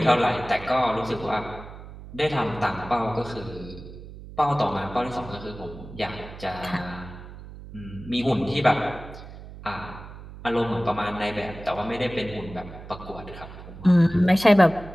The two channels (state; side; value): noise; right; hum, 14 dB below the sound